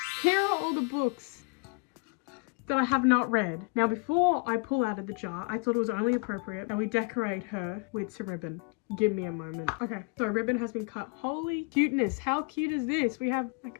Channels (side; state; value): right; quieter; 32.0 dB